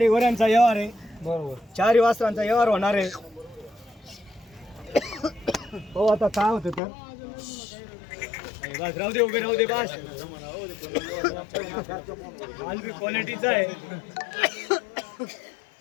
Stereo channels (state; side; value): drops out; right; at 6.8 s